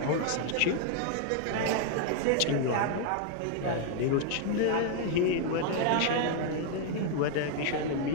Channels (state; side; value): different; both; correlation 0.00